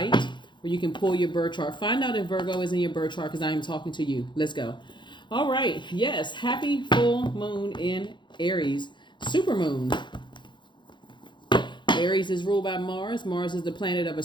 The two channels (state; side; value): late; right; 0.23 ms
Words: where you can pull your birth chart. Find out if Virgo is in your birth chart because I am talking to you. Let's go. All right. Yes. Happy full moon in Aries. Super moon. Aries is ruled by Mars. Mars is the planet of